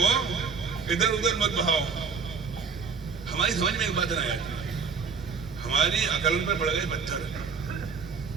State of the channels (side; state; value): left; quieter; 5.5 dB